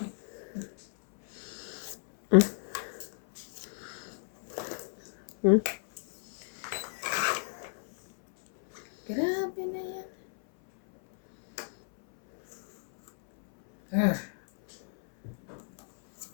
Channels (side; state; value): right; silent; 57 dB below the other